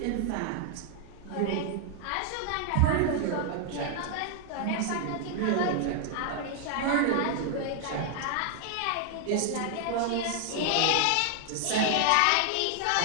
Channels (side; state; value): both; different; correlation 0.00